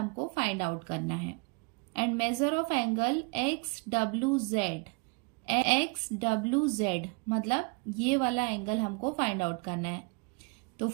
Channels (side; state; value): left; quieter; 32.9 dB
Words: फाइंड आउट करना है। And major of angle XWZ मतलब ये वाला एंगल हमको फाइंड आउट करना है। तो